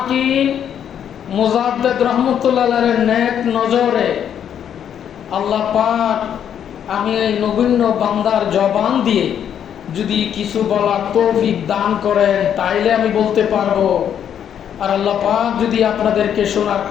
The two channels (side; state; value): right; quieter; 9.1 dB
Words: মুজাদ্দিদ রহমতুল্লাহের নেক নজরে আল্লাহ পাক আমি এই নগণ্য বান্দার জবান দিয়ে যদি কিছু বলার তৌফিক দান করেন তাইলে আমি বলতে পারবো, আর আল্লাহ পাক যদি আপনাদেরকে শোনার